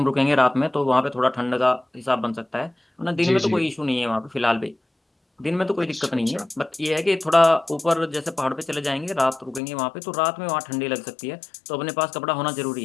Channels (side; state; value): right; drops out; at 9.6 s